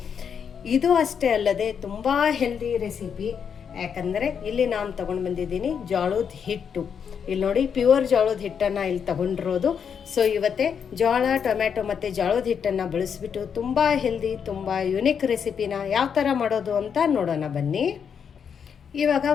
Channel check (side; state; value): right; quieter; 7.2 dB